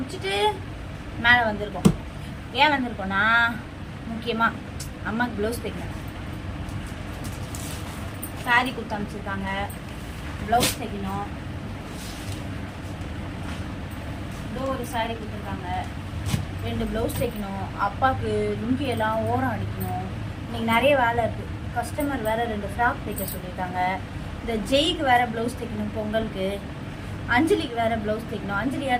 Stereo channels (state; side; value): identical; both; correlation 1.00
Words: மேலே வந்திருக்கோம். ஏன் வந்திருக்கோன்னா, முக்கியமாக அம்மாவுக்கு ப்ளவுஸ் தைக்கணும். சாரி கொடுத்து அனுப்பிச்சிருக்காங்க, ப்ளவுஸ் தைக்கணும். இதோ ஒரு சாரி கொடுத்துருக்காங்க, 2 ப்ளவுஸ் தைக்கணும். அப்பாவுக்கு லுங்கியெல்லாம் ஓரம் அடிக்கணும். இன்னைக்கு நிறைய வேலை இருக்குது. கஸ்டமர் வேறு 2 ஃப்ராக் தைக்க சொல்லியிருக்காங்க. இந்த ஜெய்க்கு வேறு ப்ளவுஸ் தைக்கணும் பொங்கலுக்கு. அஞ்சலிக்கு வேறு ப்ளவுஸ் தைக்கணும். அஞ்சலி